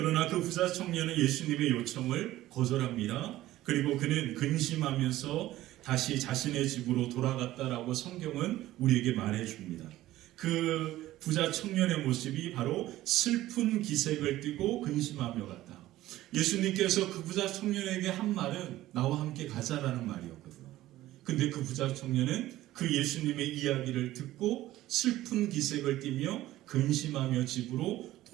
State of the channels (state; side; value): quieter; left; 15.4 dB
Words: 그 부자 청년은 예수님의 요청을 거절합니다. 그리고 그는 근심하면서 다시 자신의 집으로 돌아갔다라고 성경은 우리에게 말해줍니다. 그 부자 청년의 모습이 바로 슬픈 기색을 띠고 근심하며 갔다. 예수님께서 그 부자 청년에게 한 말은 나와 함께 가자라는 말이었거든요. 근데 그 부자 청년은 그 예수님의 이야기를 듣고 슬픈 기색을 띠며 근심하며 집으로